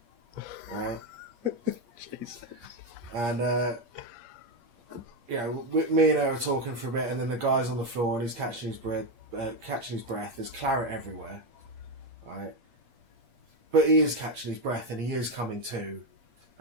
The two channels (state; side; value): late; left; 8.5 ms